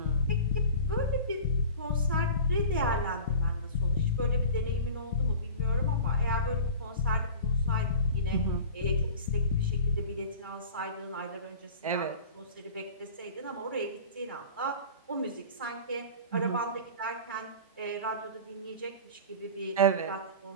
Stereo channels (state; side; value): inverted; both; correlation -0.37